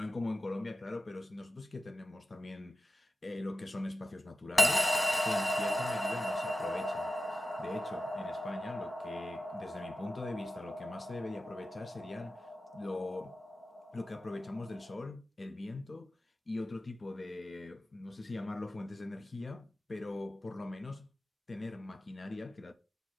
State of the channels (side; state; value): both; normal; correlation 0.93